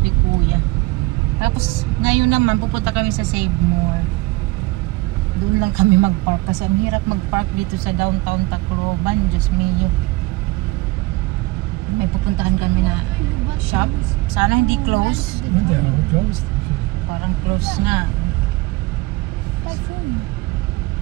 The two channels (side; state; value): left; quieter; 21.6 dB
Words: ni Kuya. Tapos ngayon naman pupunta kami sa Save More. Doon lang kami mag-park kasi ang hirap mag-park dito sa downtown Tacloban. Diyos mio. May pupuntahan kami na shop. Sana hindi close. Parang close nga.